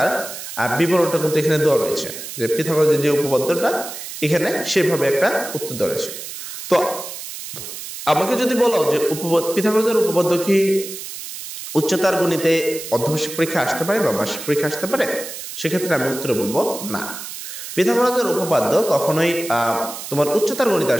বিবরণটা কিন্তু এখানে দেওয়া রয়েছে, যে পিথাগোরাসের যে উপপাদ্যটা এখানে সেভাবে একটা উত্তর দেওয়া রয়েছে। তো আমাকে যদি বলো যে পিথাগোরাসের উপপাদ্য কি উচ্চতর গণিতে অর্ধবার্ষিক পরীক্ষা আসতে পারে বা বার্ষিক পরীক্ষা আসতে পারে, সেক্ষেত্রে আমি উত্তরে বলবো না। পিথাগোরাসের উপপাদ্য কখনোই তোমার উচ্চতর গণিতে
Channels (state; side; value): noise; right; hiss, 10 dB below the sound